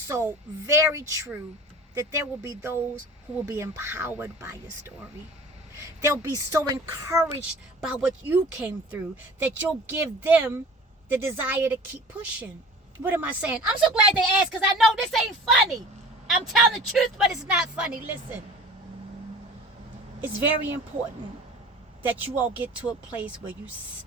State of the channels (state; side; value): normal; both; correlation 0.42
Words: very true that there will be those who will be empowered by your story. They'll be so encouraged by what you came through that you'll give them the desire to keep pushing. What am I saying? I'm so glad they asked because I know this ain't funny. I'm telling the truth, but it's not funny. Listen. It's very important that you all get to a place where you